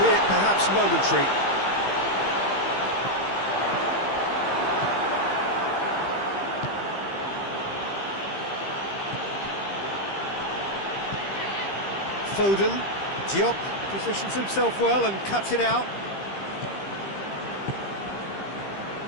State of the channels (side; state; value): right; late; 15 ms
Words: perhaps momentary. Foden, Diop positions himself well and cuts it out.